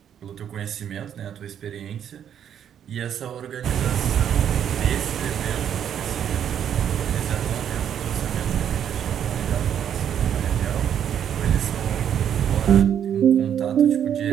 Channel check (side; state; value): left; quieter; 9.2 dB